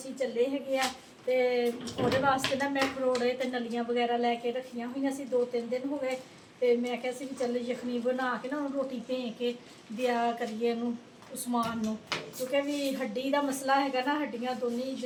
चले है। तो वो वास्ते ना मैं खरोड़े तो नलियाँ वगैरह लैके रखिया हुई सी, 2-3 दिन हो गए। तो मैं क्या भी चल यखनी बना के ना रोटी भें के दिया करिए उस्मान नूं, क्योंकि भी हड्डी का मसला है ना, हड्डियाँ दोनों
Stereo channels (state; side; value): identical; both; correlation 1.00